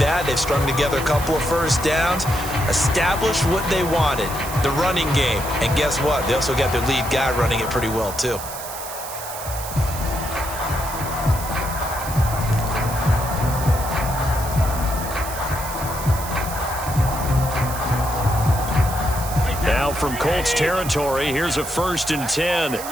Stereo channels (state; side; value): noise; right; hiss, 10 dB below the sound